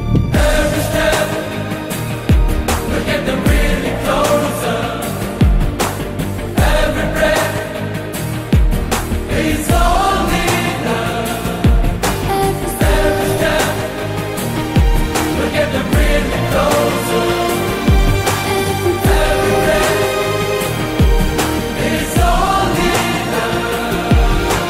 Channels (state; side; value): identical; both; correlation 1.00